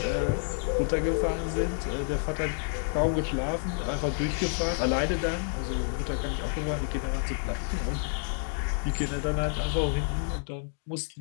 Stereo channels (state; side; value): silent; right; 58 dB below the other